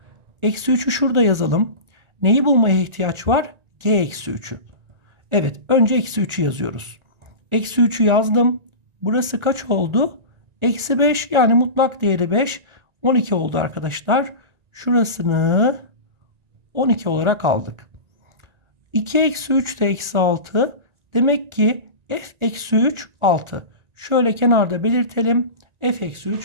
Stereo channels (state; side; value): late; left; 1.9 ms